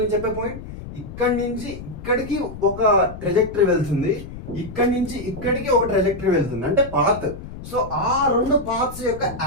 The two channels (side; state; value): left; noise; rumble, 12 dB below the sound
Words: నేను చెప్పే పాయింట్? ఇక్కడి నుంచి ఇక్కడికి ఒక ట్రెజెక్టరీ వెళ్తుంది, ఇక్కడి నుంచి ఇక్కడికి ఒక ట్రెజెక్టరీ వెళ్తుంది, అంటే పాత్. సో ఆ రెండు పాత్స్ యొక్క